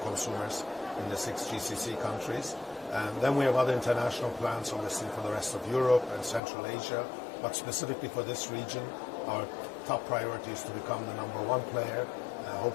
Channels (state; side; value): drops out; right; at 6.4 s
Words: in the 6 GCC countries. Then we have other international plans, obviously, for the rest of Europe and Central Asia. But specifically for this region, our top priority is to become the #1 player,